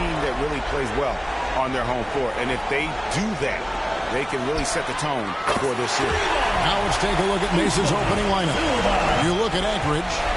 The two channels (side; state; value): both; identical; correlation 1.00